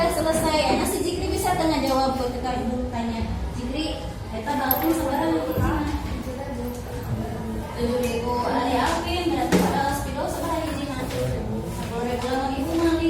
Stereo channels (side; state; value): both; identical; correlation 1.00